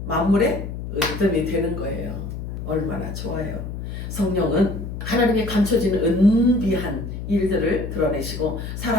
만물의 으뜸이 되는 거예요. 얼마나 좋아요. 성령은 하나님의 감춰진 은비한 일들을 드러내시고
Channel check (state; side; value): noise; left; hum, 7 dB below the sound